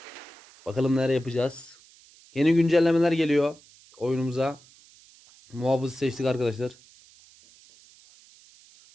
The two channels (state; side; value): noise; right; hiss, 26 dB below the sound